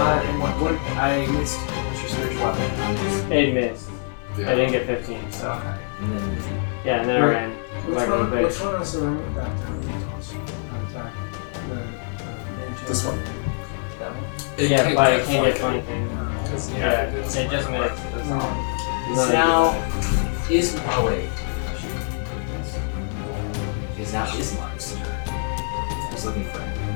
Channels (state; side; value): silent; right; 62 dB below the other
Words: in one what? I missed. What's your spiritual weapon? It missed. Yeah. I didn't get 15, so. Okay. And then Yeah, and then I Wait, ran. Which Like a one bitch. is the room that attack? This one. that one. It Yeah, but it can't flank get 20 things. Yeah, Yeah, it is. it just missed. That's all. Is now is oh wait. Is now Ismark's turn. I was looking for it.